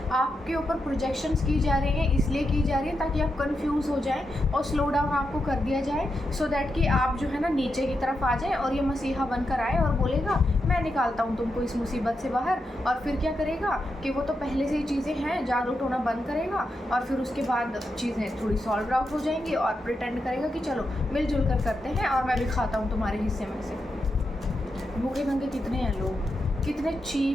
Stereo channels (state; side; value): normal; both; correlation 0.86